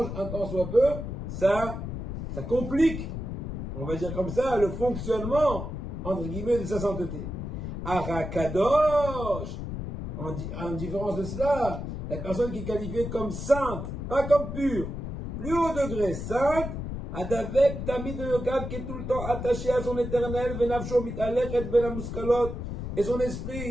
un tant soit peu, ça complique, on va dire comme ça, le fonctionnement, entre guillemets, de sa sainteté. Arakadosh, en différence de cela, la personne qui est qualifiée comme sainte, pas comme pure, plus haut degré, sainte, Adavek Tamid Yokav, qui est tout le temps attaché à son éternel, Venavsho Mitalech Ben Amuskalot, et son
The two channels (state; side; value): noise; left; rumble, 6 dB below the sound